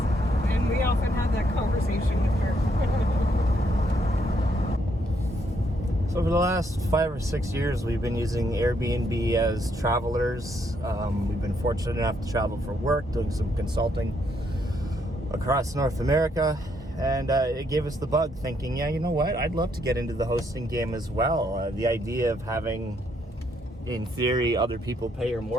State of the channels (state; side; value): normal; both; correlation 0.73